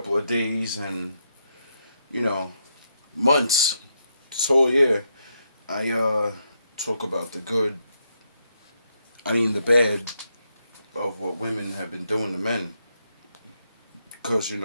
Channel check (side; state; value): both; inverted; correlation -0.80